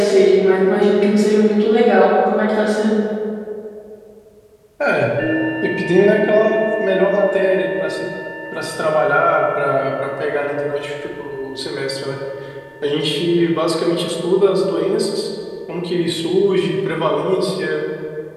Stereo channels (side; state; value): both; identical; correlation 1.00